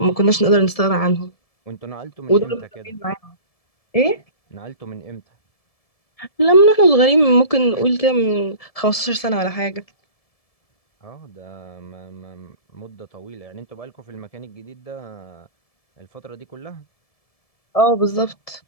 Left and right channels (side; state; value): right; late; 1.7 ms